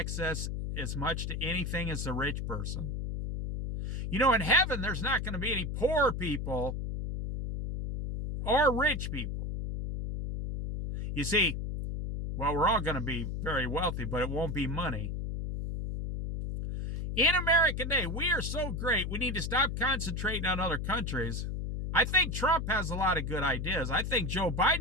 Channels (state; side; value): noise; left; hum, 3 dB below the sound